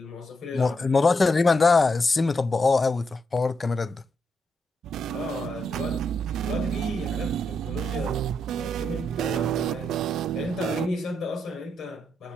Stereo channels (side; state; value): both; normal; correlation 0.81